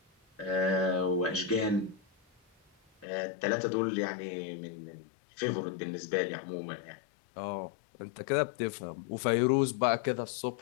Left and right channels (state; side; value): drops out; right; at 3.1 s